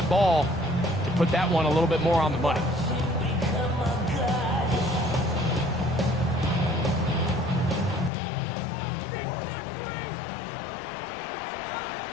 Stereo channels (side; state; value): right; drops out; at 8.1 s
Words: ball to put that one a little bit more on the money.